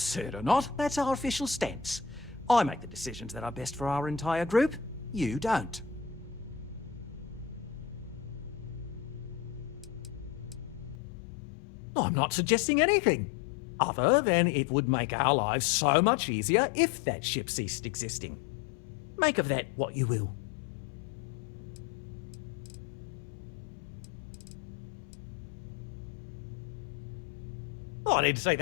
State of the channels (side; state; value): right; drops out; at 11.0 s